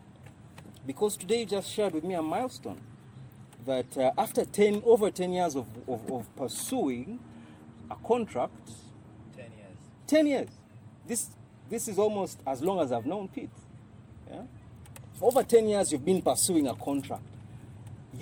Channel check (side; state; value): both; identical; correlation 1.00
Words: because today you just shared with me a milestone, that after over 10 years of pursuing a contract, 10 years. 10 years. This is almost as long as I've known Pete. Yeah? Over 10 years you've been pursuing a contract.